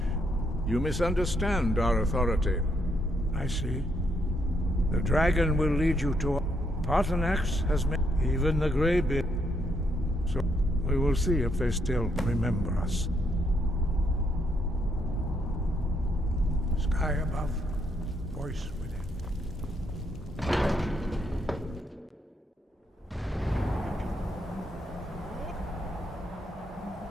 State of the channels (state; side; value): normal; both; correlation 0.75